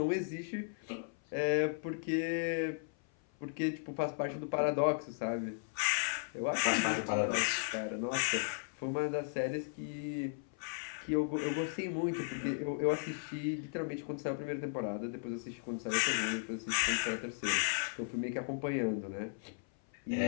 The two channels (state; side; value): silent; right; 54 dB below the other